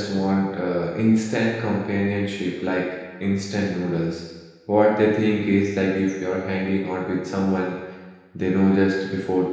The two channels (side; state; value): both; identical; correlation 1.00